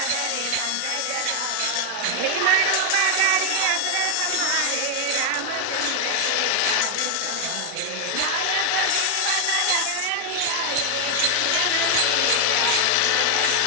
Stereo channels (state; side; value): different; both; correlation 0.00